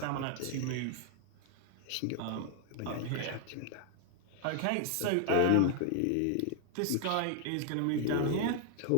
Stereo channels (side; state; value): both; different; correlation 0.00